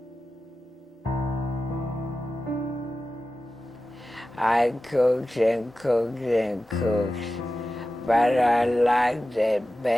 I cooked and cooked and cooked, but I liked it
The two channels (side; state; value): both; normal; correlation 0.94